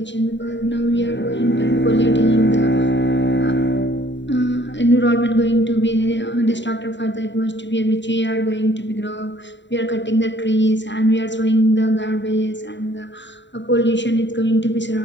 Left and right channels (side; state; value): right; late; 0.52 ms